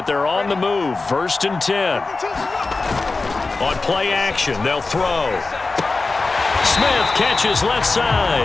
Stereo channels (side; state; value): right; quieter; 3.7 dB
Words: they're on the move. 1st and 10. On play action, they'll throw. Smith catches left